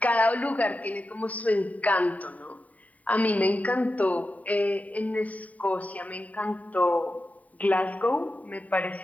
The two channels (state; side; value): late; right; 0.070 ms